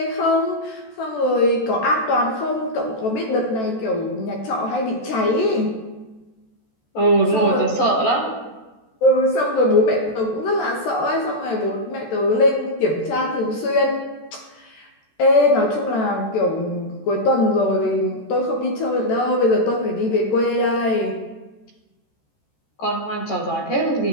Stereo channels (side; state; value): right; late; 14 ms